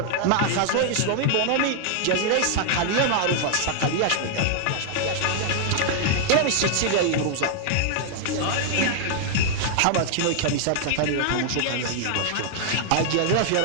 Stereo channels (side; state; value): both; different; correlation 0.00